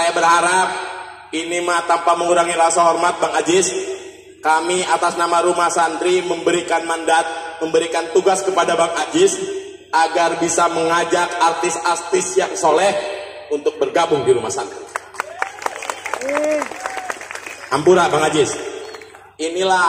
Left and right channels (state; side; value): identical; both; correlation 1.00